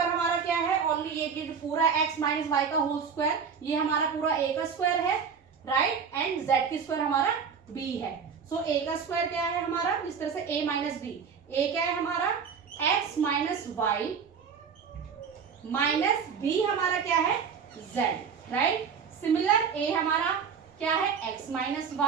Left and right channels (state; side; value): quieter; left; 6.5 dB